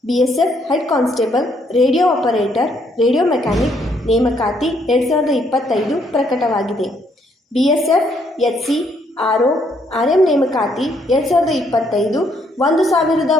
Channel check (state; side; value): normal; both; correlation 0.70